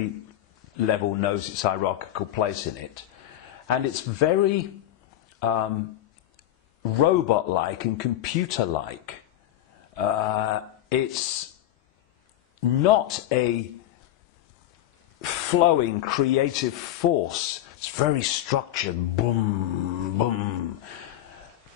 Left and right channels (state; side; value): quieter; right; 12.9 dB